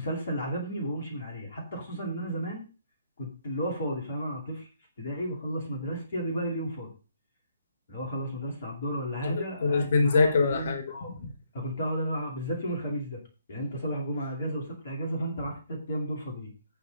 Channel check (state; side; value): inverted; both; correlation -0.72